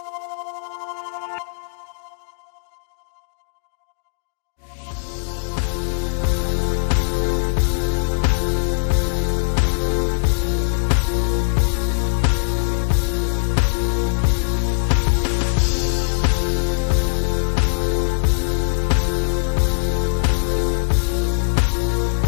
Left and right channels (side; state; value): right; silent; digital silence